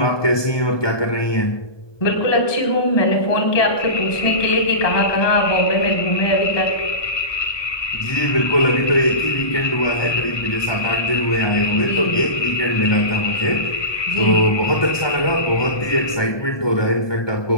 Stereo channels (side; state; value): right; late; 1.2 ms